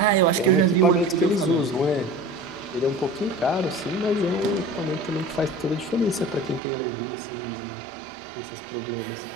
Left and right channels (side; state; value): left; drops out; at 6.6 s